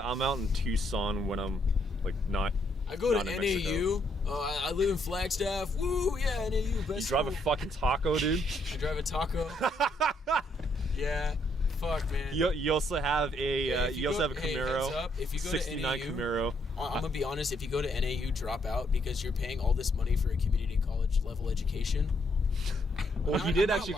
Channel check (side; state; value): both; normal; correlation 0.73